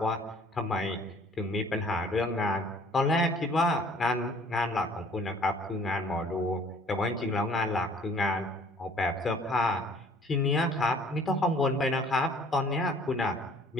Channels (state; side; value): normal; both; correlation 0.55